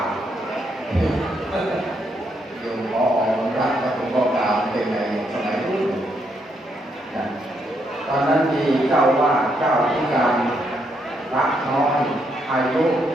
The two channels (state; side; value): normal; both; correlation 0.76